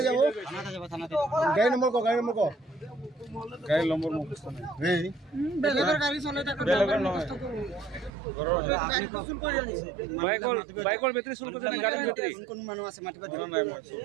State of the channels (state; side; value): drops out; left; at 8.1 s